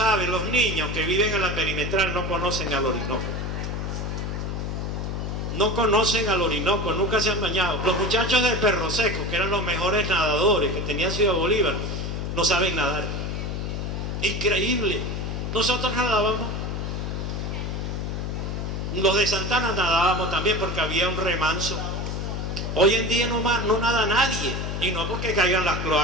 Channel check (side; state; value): left; noise; hum, 3 dB below the sound